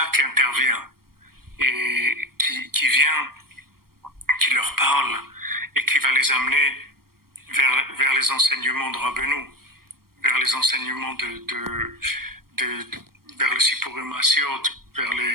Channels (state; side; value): late; left; 0.93 ms